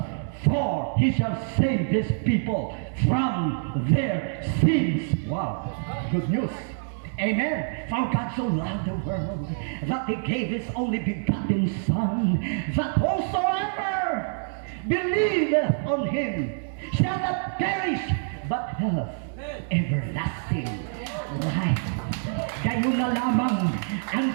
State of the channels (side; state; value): left; silent; 61 dB below the other